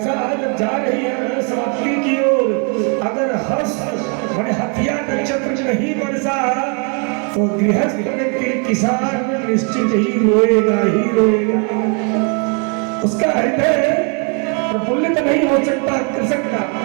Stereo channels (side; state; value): left; quieter; 37.6 dB